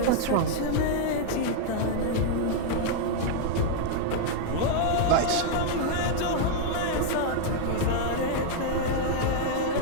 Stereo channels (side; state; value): both; different; correlation 0.00